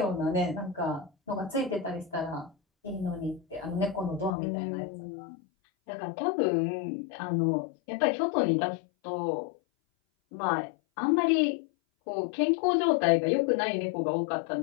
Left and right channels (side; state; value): right; drops out; at 4.3 s